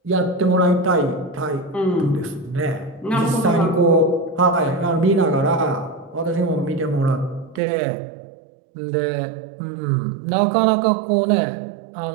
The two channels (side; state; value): left; drops out; at 7.6 s